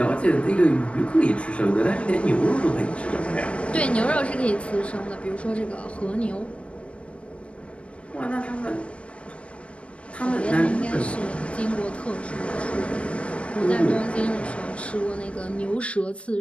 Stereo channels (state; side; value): late; right; 0.061 ms